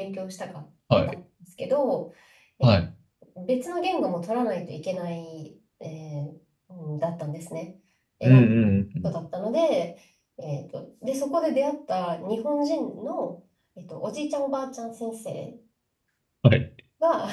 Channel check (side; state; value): both; identical; correlation 1.00